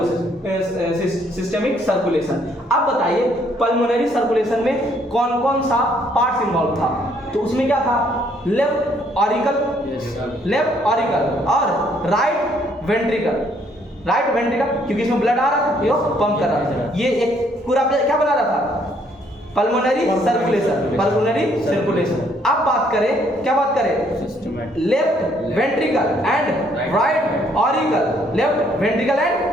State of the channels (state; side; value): normal; both; correlation 0.66